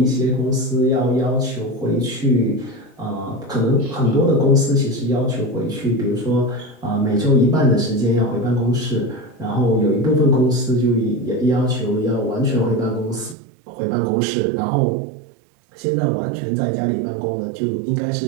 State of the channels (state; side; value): drops out; left; at 13.4 s